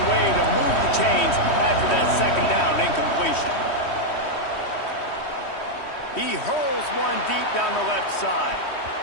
way to move the chains after that 2nd down incompletion. He hurls one deep down the left side.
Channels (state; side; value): late; right; 3.1 ms